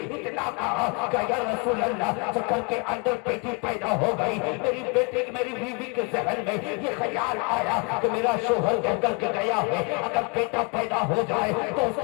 इतना कहा कि या रसूल अल्लाह तो घर के अंदर बेटी पैदा हो गई। मेरी बेटी मेरी बीवी के जहन में ये ख्याल आया कि मेरा शोहर कह करके गया है अगर बेटा पैदा हो जाए तो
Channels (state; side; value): quieter; right; 30.7 dB